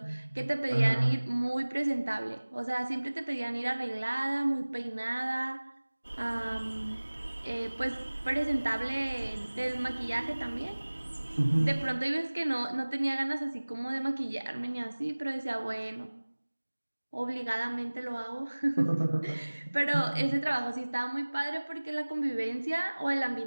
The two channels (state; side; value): inverted; both; correlation -1.00